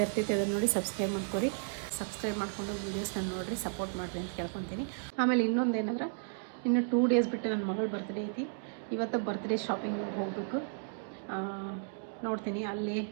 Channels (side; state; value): left; silent; digital silence